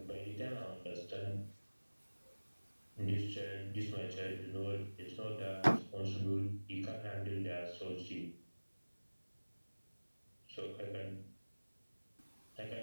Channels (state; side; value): inverted; both; correlation -1.00